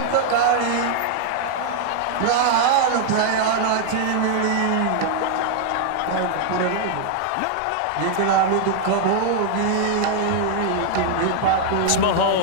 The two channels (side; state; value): both; different; correlation 0.00